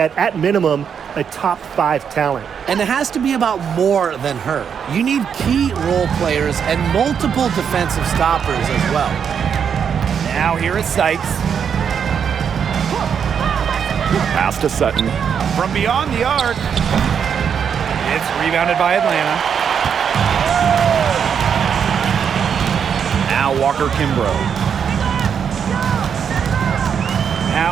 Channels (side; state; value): left; quieter; 7.4 dB